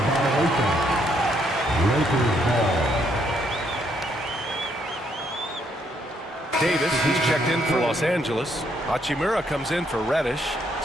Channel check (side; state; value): both; normal; correlation 0.72